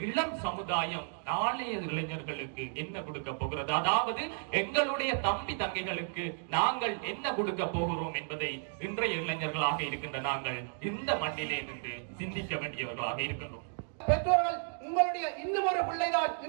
இளம் சமுதாயம் நாளைய இளைஞர்களுக்கு என்ன கொடுக்க போகிறது, அதாவது எங்களுடைய தம்பி தங்கைகளுக்கு நாங்கள் என்ன கொடுக்க போகிறோம் என்பதை இன்றைய இளைஞர்களாக இருக்கின்ற நாங்கள் இந்த மண்ணிலே நின்று சிந்திக்க வேண்டியவர்களாக இருக்கின்றோம். பெற்றோர்கள், உங்களுடைய இன்னும் ஒரு பிள்ளைதான்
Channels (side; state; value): left; silent; 56 dB below the other